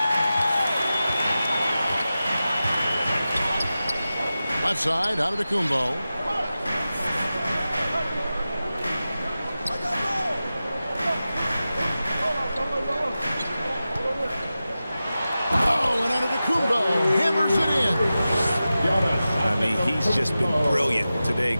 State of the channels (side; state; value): both; inverted; correlation -0.94